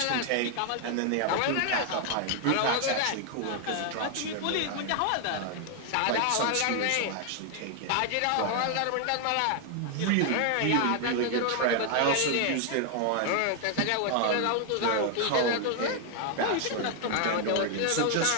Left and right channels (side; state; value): both; different; correlation 0.00